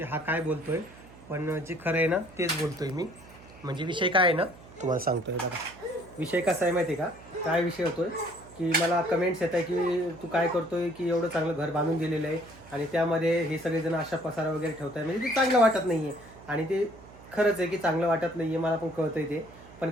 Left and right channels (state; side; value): noise; right; hum, 21 dB below the sound